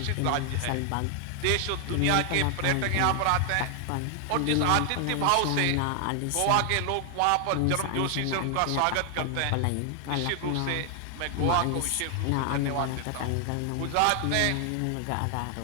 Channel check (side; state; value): both; different; correlation 0.00